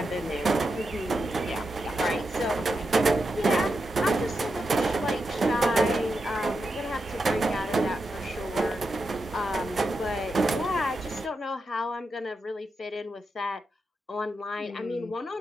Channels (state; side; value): normal; both; correlation 0.87